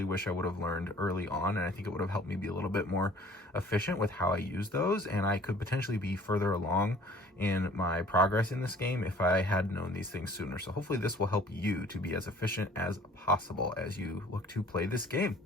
wish I would have learned early on, and I think it would have helped me be a little bit more efficient with how I use those, and I could potentially be further along in my progress in this game if I had known these things sooner. So hopefully this will help you to be as efficient as possible as you look to play this game.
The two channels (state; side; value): normal; both; correlation 0.52